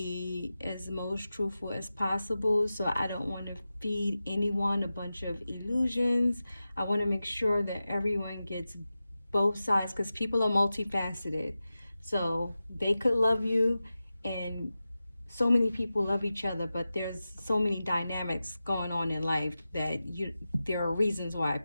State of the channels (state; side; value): inverted; both; correlation -0.94